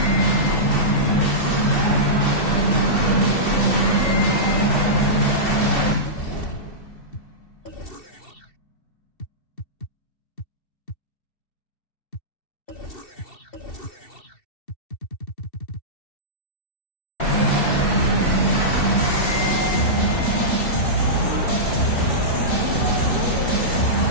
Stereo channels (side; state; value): right; late; 2.7 ms